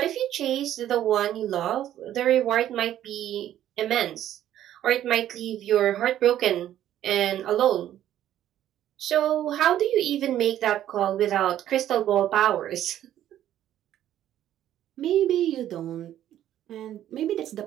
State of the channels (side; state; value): left; quieter; 11.8 dB